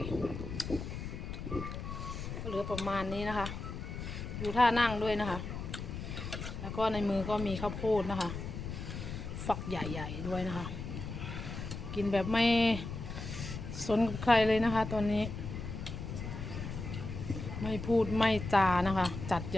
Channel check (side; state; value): left; noise; rumble, 7 dB below the sound